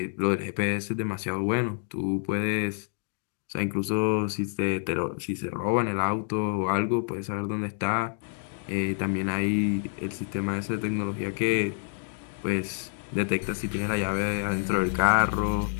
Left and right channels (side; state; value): right; silent; 59 dB below the other